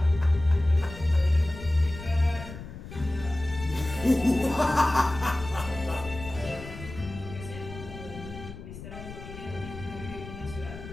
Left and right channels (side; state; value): left; noise; rumble, 12 dB below the sound